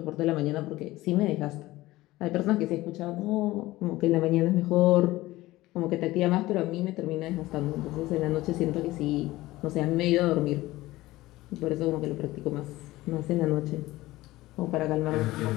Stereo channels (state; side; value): quieter; right; 17.9 dB